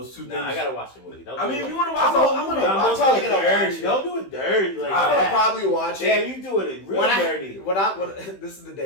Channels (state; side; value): late; right; 15 ms